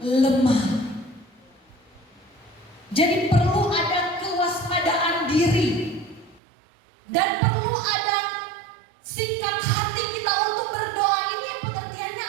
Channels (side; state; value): left; drops out; at 6.4 s